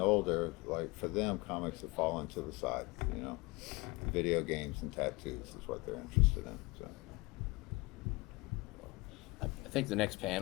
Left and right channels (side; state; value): right; quieter; 24.3 dB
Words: like for them, comics have fallen to the side. You know, video games and tattoos is what they're interested in. So. I think the next